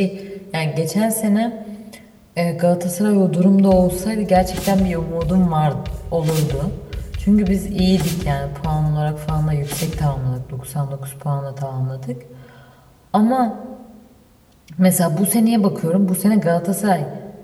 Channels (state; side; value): identical; both; correlation 1.00